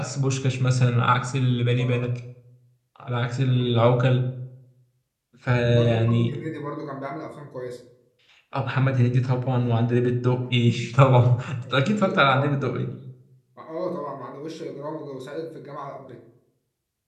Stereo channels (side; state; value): both; identical; correlation 1.00